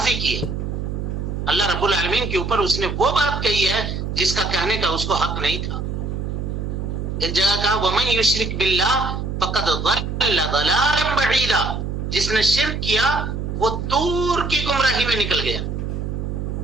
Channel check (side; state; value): right; noise; hum, 4 dB below the sound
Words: کی ہے. اللہ رب العالمین کے اوپر اس نے وہ بات کہی ہے جس کا کہنے کا اس کو حق نہیں تھا. ایک جگہ کہا وَمَن يُشْرِكْ بِاللَّهِ فَقَدْ ضَلَّ ضَلَالًا بَعِيدًا، جس نے شرک کیا وہ دور کی گمراہی میں نکل گیا.